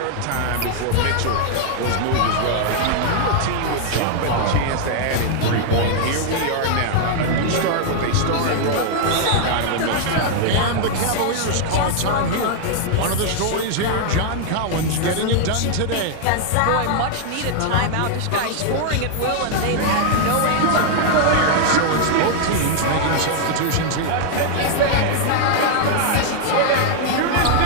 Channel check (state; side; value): different; both; correlation 0.00